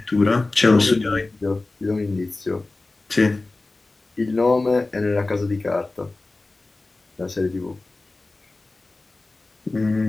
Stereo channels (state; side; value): quieter; right; 3.2 dB